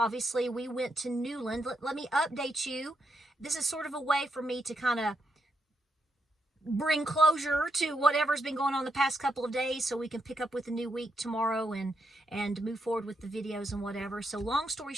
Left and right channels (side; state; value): both; normal; correlation 0.81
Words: obviously we went to Newland. Let me update you. This is sort of a way for me to kind of bring closure to whatever's been going on the past couple of days so we can pick up with a new week tomorrow and move forward with the videos and whatever. So long story